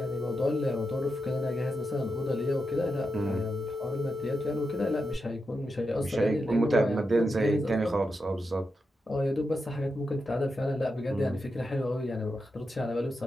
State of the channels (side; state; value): both; normal; correlation 0.87